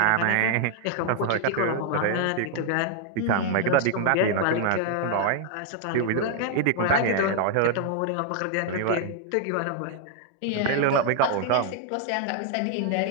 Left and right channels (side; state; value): both; different; correlation 0.00